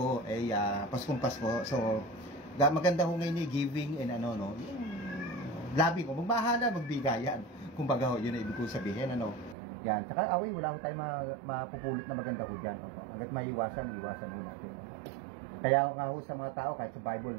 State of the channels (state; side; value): drops out; left; at 9.6 s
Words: Paskong Pasko. So, maganda ho ngayon giving and loving o magmahala, magbigayan. Kumbaga ho, yun ang ibig ko sabihin, Yan, tsaka away, wala ho tayo mapupulot na maganda ho dyan. Hanggat maiwasan ho natin. Kaya nga ho sa mga tao, kahit sa Bible